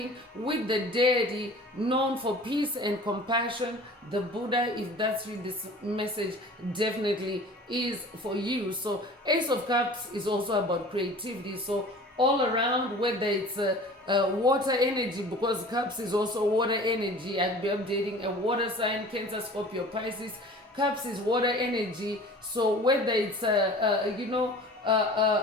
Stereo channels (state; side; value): normal; both; correlation 0.43